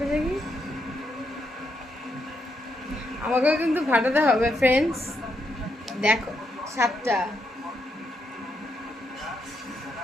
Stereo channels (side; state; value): both; normal; correlation 0.79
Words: দেখি, আমাকেও কিন্তু ফাটাতে হবে ফ্রেন্ডস। দেখো, সাতটা।